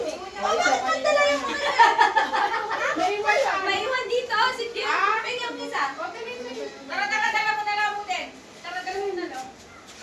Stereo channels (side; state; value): both; identical; correlation 1.00